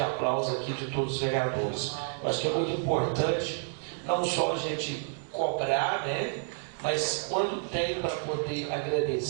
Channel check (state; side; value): silent; left; digital silence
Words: aqui de todos os vereadores. Eu acho que é muito importante, não só a gente cobrar, né, mas quando tem para poder